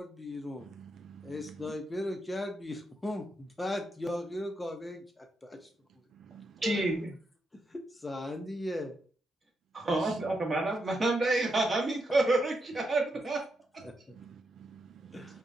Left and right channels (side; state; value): both; normal; correlation 0.83